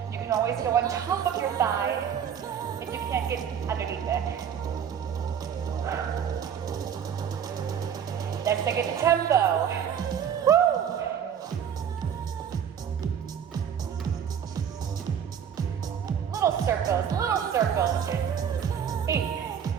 You can always go on top of your thigh if you can't get underneath it. Let's take it to tempo. Woo! Little circles. 8,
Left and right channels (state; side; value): quieter; left; 8.3 dB